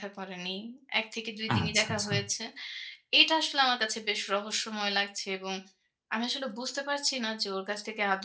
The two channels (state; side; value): identical; both; correlation 1.00